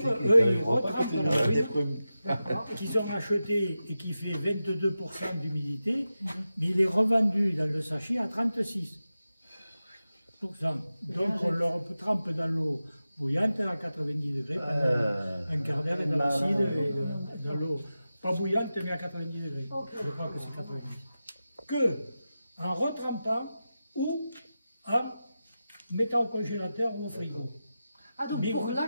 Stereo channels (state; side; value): inverted; both; correlation -0.93